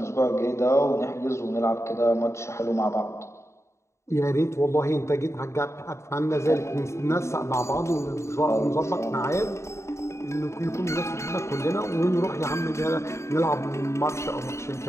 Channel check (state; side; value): late; right; 0.14 ms